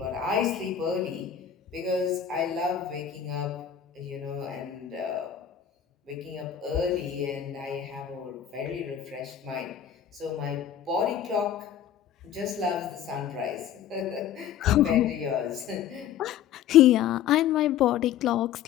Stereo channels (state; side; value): quieter; right; 9.4 dB